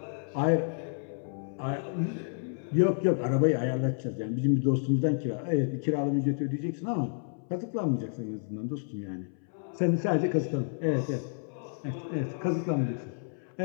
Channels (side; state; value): right; silent; 58 dB below the other